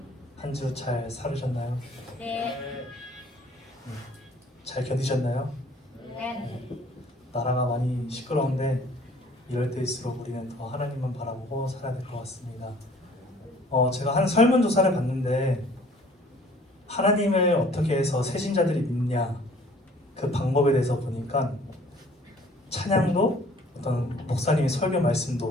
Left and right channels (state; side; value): normal; both; correlation 0.54